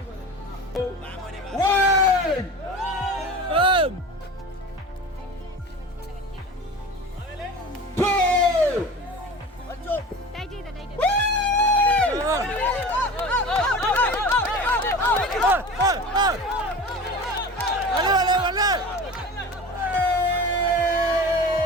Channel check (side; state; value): both; normal; correlation 0.35